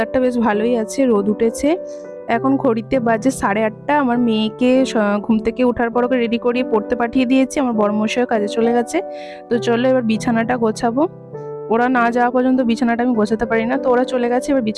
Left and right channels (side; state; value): both; identical; correlation 1.00